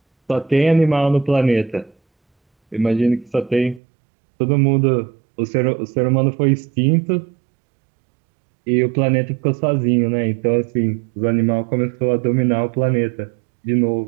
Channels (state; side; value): drops out; left; at 3.8 s